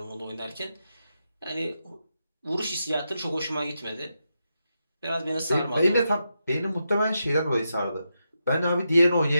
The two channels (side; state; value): both; inverted; correlation -0.86